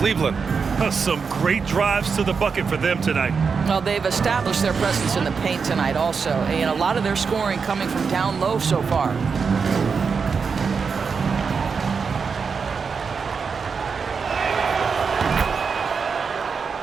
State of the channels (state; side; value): quieter; left; 5.5 dB